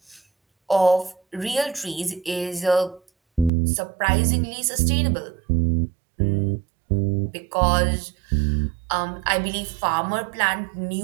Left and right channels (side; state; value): left; drops out; at 3.5 s